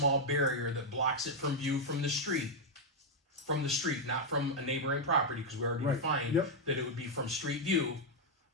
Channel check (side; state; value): both; normal; correlation 0.00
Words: barrier that blocks it from view from the street, not from a neighboring property, because we already Right. defined Yep. that it would be from street view,